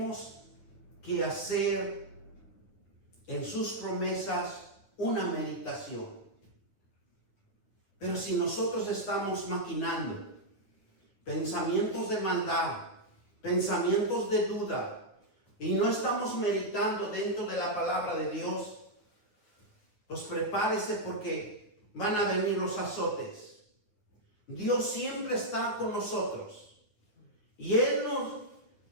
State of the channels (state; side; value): late; right; 9.7 ms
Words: que hacer en sus promesas una meditación. Pero si nosotros estamos maquinando pensamientos de maldad, pensamientos de duda, y no estamos meditando dentro de la palabra de Dios, pues prepárese porque van a venir los azotes. Dios siempre está con nosotros y Él